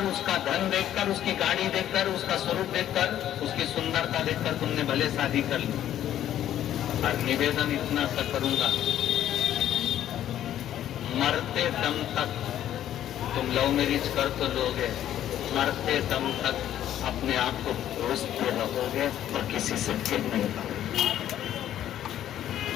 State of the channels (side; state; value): right; quieter; 11.6 dB